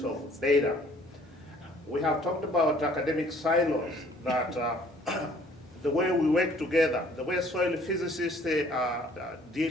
of data. We have talked about academic silos, that the way we work together, the way soil physicists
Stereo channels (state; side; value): normal; both; correlation 0.58